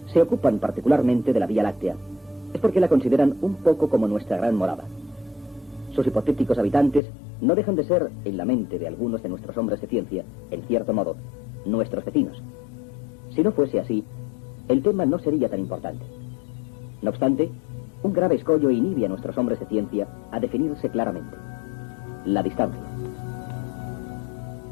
se ocupan particularmente de la Vía Láctea, es porque la consideran un poco como nuestra gran morada. Sus hipotéticos habitantes no dejan de ser, en la mente de algunos de nuestros hombres de ciencia, en cierto modo, nuestros vecinos. Si no fuese así, el tema no sería tan importante. No obstante, un grave escollo inhibe a nuestros hombres de ciencia a definirse claramente: la distancia.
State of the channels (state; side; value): drops out; right; at 7.0 s